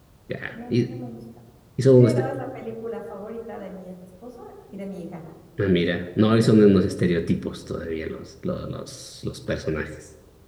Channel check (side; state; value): both; identical; correlation 1.00